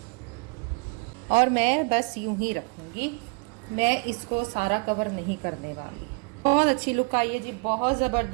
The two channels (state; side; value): quieter; left; 32.1 dB